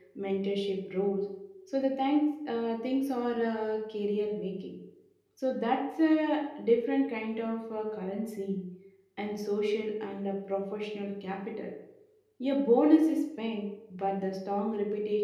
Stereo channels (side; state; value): both; identical; correlation 1.00